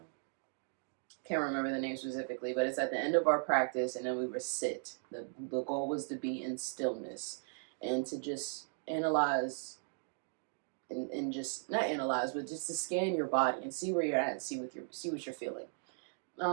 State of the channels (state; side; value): silent; left; digital silence